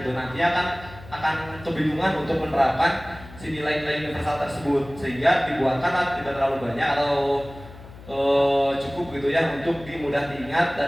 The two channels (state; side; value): noise; left; hum, 18 dB below the sound